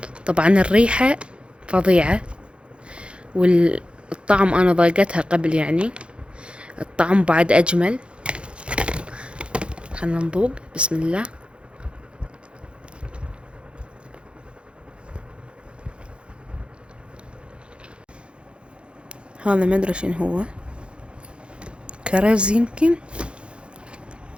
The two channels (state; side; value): late; left; 0.057 ms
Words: طبعا الريحة فظيعة، والطعم انا ضايقتها قبل، يعني الطعم بعد اجمل. خلنا نذوق. بسم الله. هذا ما ادري شنو هو، كرز يمكن.